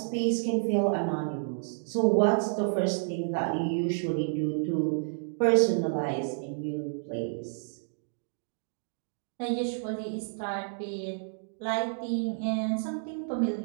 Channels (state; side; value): silent; left; digital silence